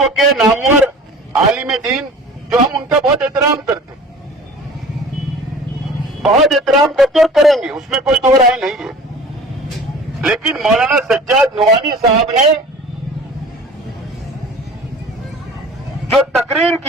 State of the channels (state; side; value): normal; both; correlation 0.43